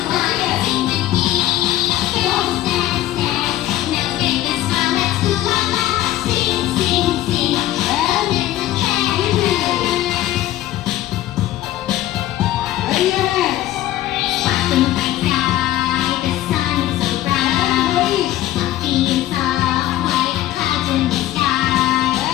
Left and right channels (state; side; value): quieter; right; 14.2 dB